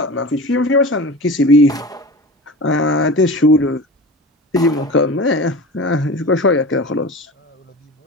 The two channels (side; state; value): both; normal; correlation 0.32